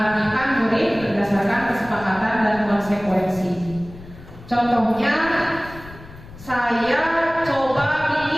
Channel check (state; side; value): noise; left; rumble, 18 dB below the sound